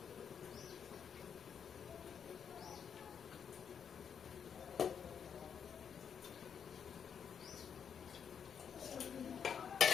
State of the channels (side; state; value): right; quieter; 7.4 dB